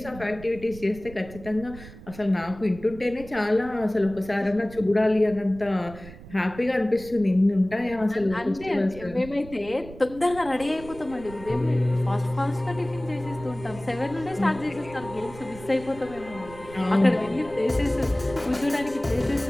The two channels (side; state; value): right; noise; rumble, 17 dB below the sound